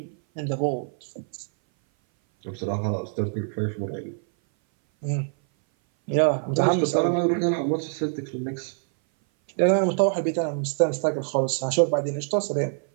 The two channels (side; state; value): left; silent; 58 dB below the other